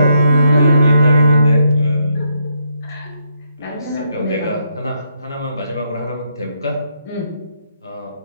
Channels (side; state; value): both; inverted; correlation -0.77